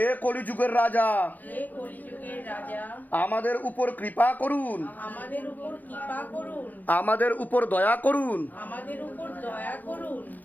কলিযুগের রাজা, আমাদের উপর কৃপা করুন, আমাদের উপর দয়া করুন,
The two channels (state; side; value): late; right; 0.086 ms